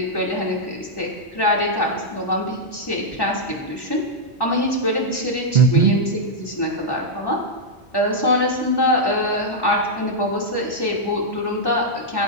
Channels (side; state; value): both; normal; correlation -0.04